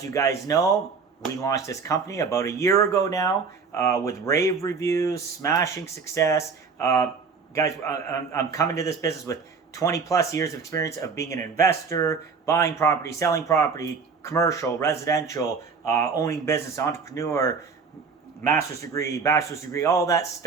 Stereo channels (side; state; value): left; quieter; 5.3 dB